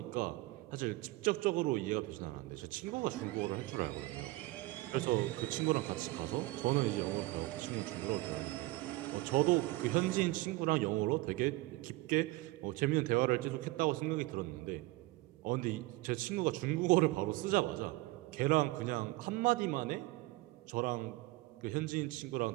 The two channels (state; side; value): quieter; left; 20.2 dB